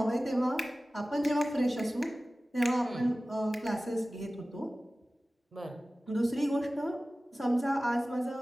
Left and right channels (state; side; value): normal; both; correlation 0.97